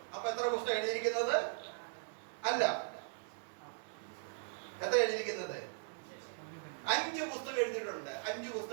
അപ്പൊ എത്ര പുസ്തകം എഴുതിയിരിക്കുന്നത്? അല്ല, എത്ര എഴുതിയിരിക്കുന്നത്? 5 പുസ്തകം എഴുതിയിട്ടുണ്ട്. 5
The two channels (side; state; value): left; silent; digital silence